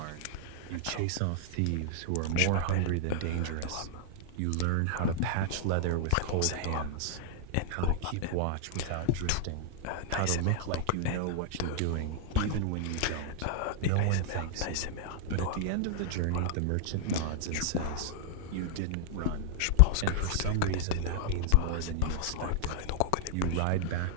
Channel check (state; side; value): different; both; correlation -0.01